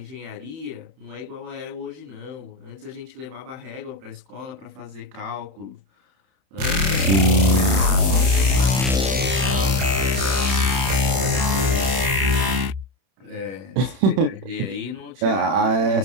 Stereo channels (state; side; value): late; left; 31 ms